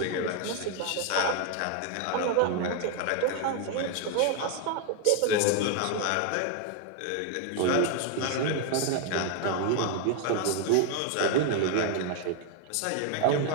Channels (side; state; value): both; different; correlation 0.01